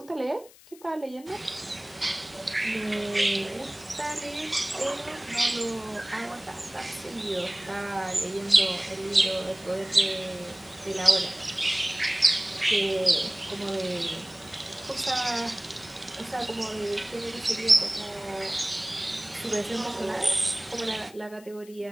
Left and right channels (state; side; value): noise; left; hiss, 23 dB below the sound